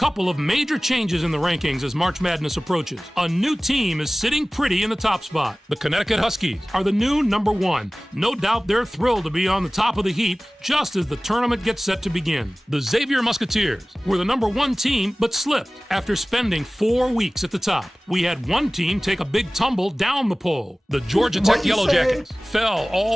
of major changes in the rankings as March Madness approaches. A new team is sitting pretty in the top spot. The Connecticut Huskies are the new number 1. No doubt they're thrilled to be on the top of the heap just as the tournament gets set to begin. The Xavier Musketeers were the number 1 team but slipped after spending 4 weeks at the top. We had one team take a big tumble down the poll. The Georgia Tech Yellow Jackets fell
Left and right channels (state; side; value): normal; both; correlation 0.98